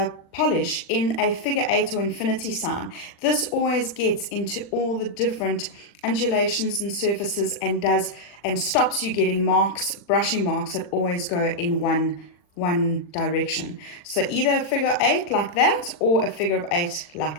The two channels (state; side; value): late; right; 40 ms